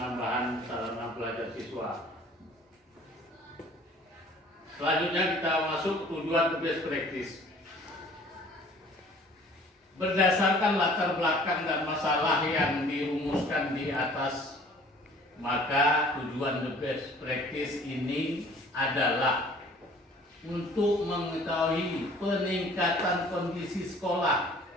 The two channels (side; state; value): both; normal; correlation 0.52